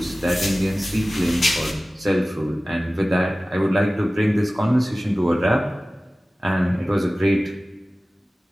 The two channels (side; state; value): both; normal; correlation 0.97